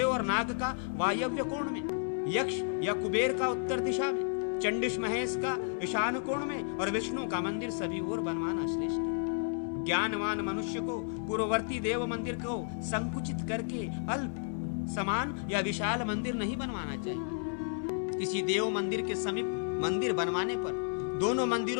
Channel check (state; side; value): silent; right; digital silence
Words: और नाग का वायव्य कोण में, यक्ष या कुबेर का उत्तर दिशा में, चंडिश महेश का ईशान कोण में और विष्णु का मंदिर सभी ओर बनवाना श्रेष्ठ है। ज्ञानवान मनुष्य को पूर्ववर्ती देव मंदिर को संकुचित करके अल्प, समान या विशाल मंदिर नहीं बनवाना चाहिए। किसी देव मंदिर के समीप मंदिर बनवाने पर दोनों